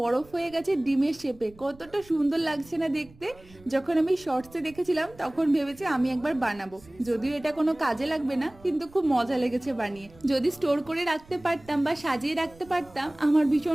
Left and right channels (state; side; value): noise; right; rumble, 24 dB below the sound